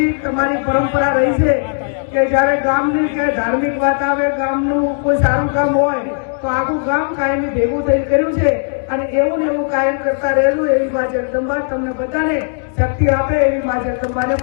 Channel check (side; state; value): right; silent; digital silence